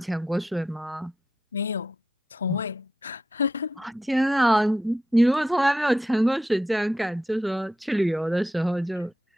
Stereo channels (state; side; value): normal; both; correlation 0.86